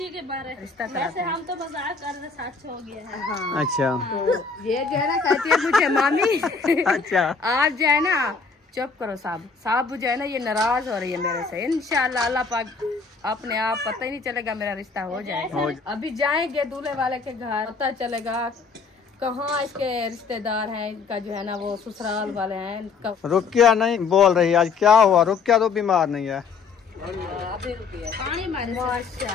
के बारे रिश्ता वैसे हम तो मजाक कर रहे, सच हो गया है। हाँ। अच्छा तो ये जो है ना कहती है मुझे मामी अच्छा आज जो है ना चुप करो साहब, साहब जो है ना ये नाराज हो रही है मेरे से। इंशाल्लाह अल्लाह पाक अपने आप पता ही नहीं चलेगा, मेरा रिश्ता हो जाएगा। अभी जाएंगे दूल्हे वाले के घर, पता चलेगा कहाँ इसके रिश्तेदार हैं, इनका जो है ना वो ससुराल वाले हैं। रुकिया नहीं बोल रही आज, क्या हुआ? रुकिया तो बीमार नहीं है। अभी रुकिए पानी मारे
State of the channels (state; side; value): quieter; right; 4.9 dB